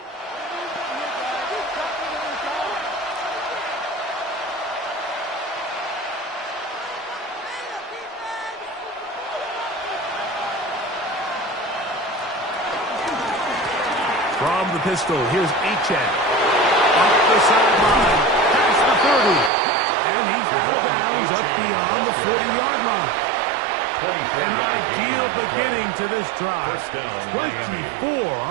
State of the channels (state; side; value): drops out; left; at 19.5 s